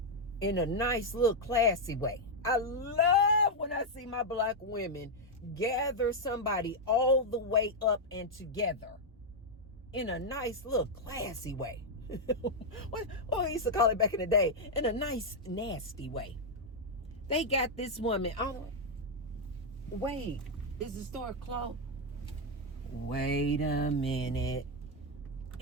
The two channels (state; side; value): normal; both; correlation 0.00